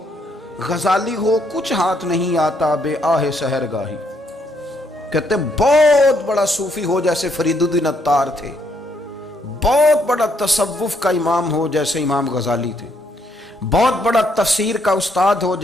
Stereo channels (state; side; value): normal; both; correlation 0.72